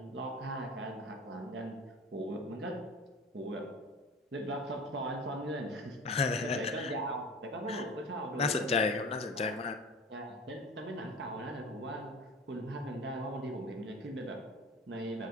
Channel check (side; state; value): both; normal; correlation 0.37